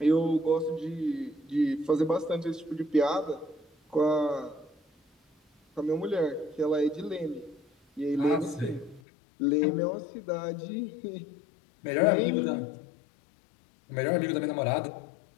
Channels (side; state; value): right; drops out; at 9.0 s